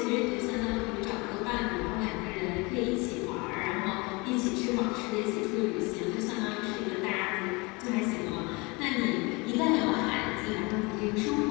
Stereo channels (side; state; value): right; quieter; 26.8 dB